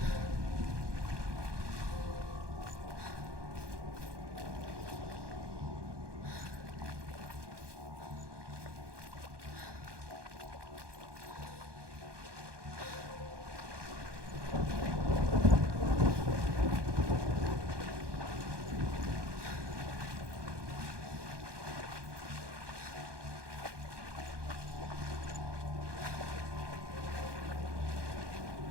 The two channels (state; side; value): late; left; 1.2 ms